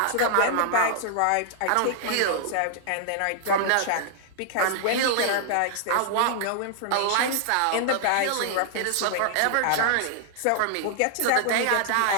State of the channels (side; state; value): both; different; correlation 0.00